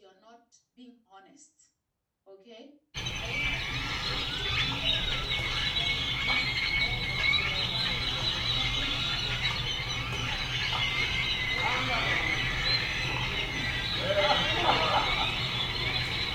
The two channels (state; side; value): identical; both; correlation 1.00